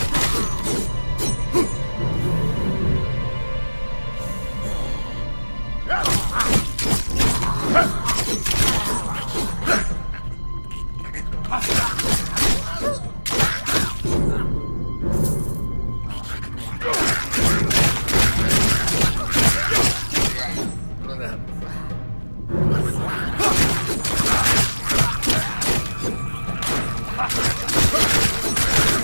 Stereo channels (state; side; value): inverted; both; correlation -1.00